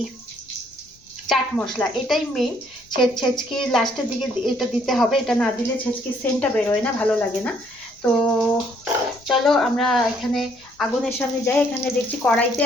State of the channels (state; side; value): noise; left; rumble, 29 dB below the sound